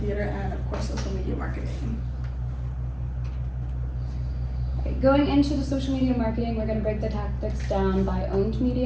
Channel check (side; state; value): both; identical; correlation 1.00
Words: and of course social media marketing. Going into the social media marketing, we're going to break the tactics down by owned